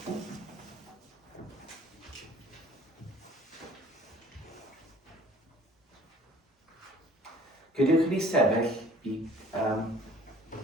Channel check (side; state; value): both; normal; correlation 0.53